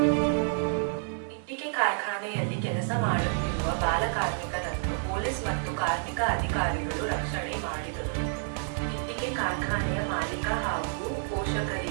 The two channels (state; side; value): silent; left; digital silence